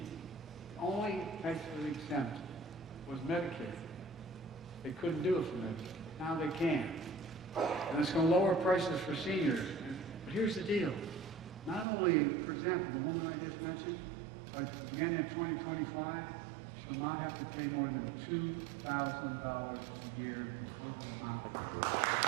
The only actually exempt was Medicaid. They couldn't do it for Medicaid. Now they can. And it's going to lower prices for seniors. But here's the deal. Not only, for example, the woman I just mentioned, beginning in 2025, she'll not have to pay more than $2,000 a year in total amount of drugs.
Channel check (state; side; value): drops out; left; at 11.9 s